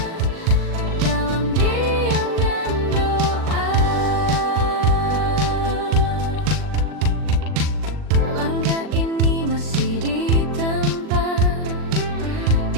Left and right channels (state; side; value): late; left; 39 ms